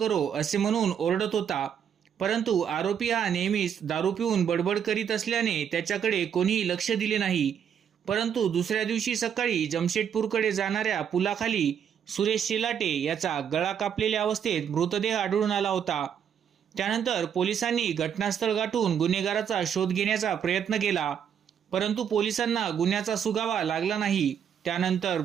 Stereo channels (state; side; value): quieter; left; 8.3 dB